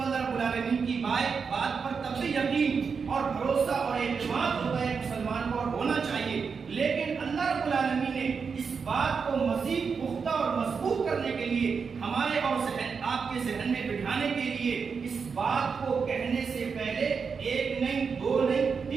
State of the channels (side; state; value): left; quieter; 5.6 dB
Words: اللہ رب العالمین کی بات پر تب سے یقین اور بھروسہ اور اعتماد ہوتا ہے مسلمان کو، اور ہونا چاہیے۔ لیکن اللہ رب العالمین نے اس بات کو مزید پختہ اور مضبوط کرنے کے لیے ہمارے اور آپ کے ذہن میں بٹھانے کے لیے اس بات کو کہنے سے پہلے ایک نہیں، دو نہیں،